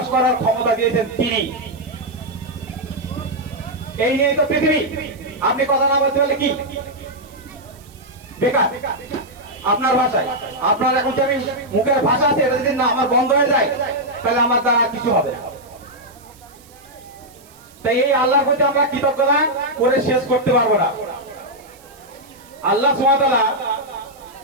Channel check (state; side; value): noise; right; hiss, 26 dB below the sound